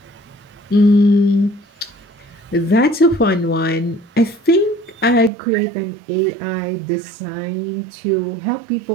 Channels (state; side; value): drops out; left; at 5.3 s